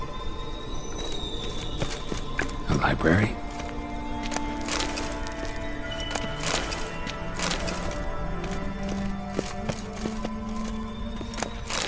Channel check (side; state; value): both; identical; correlation 1.00